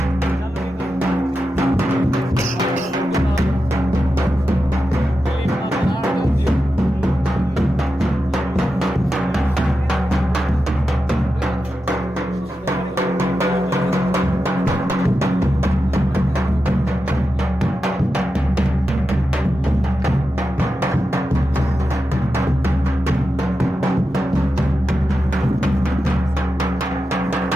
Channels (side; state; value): both; normal; correlation 0.90